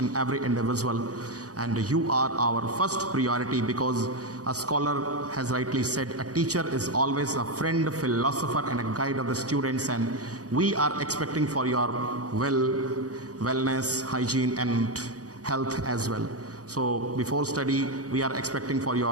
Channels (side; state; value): left; late; 0.67 ms